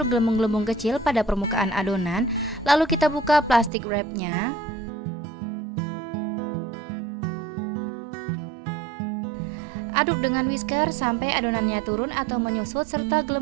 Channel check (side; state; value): left; drops out; at 3.7 s